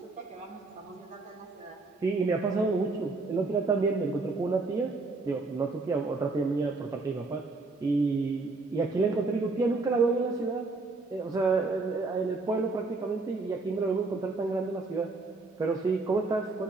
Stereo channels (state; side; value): quieter; left; 3.6 dB